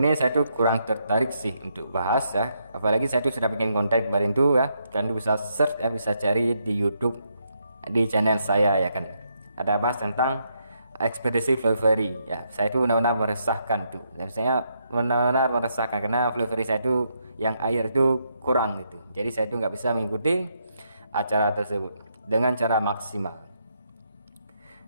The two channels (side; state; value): both; inverted; correlation -0.78